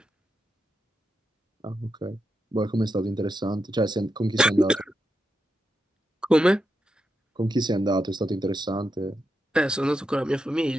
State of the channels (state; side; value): normal; both; correlation 0.86